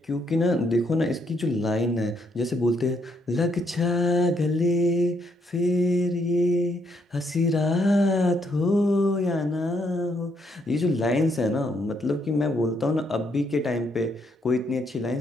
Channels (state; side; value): normal; both; correlation 0.74